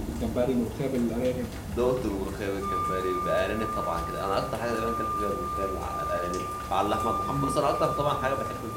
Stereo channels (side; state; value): both; identical; correlation 1.00